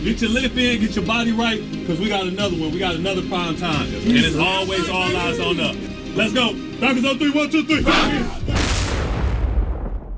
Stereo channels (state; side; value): identical; both; correlation 1.00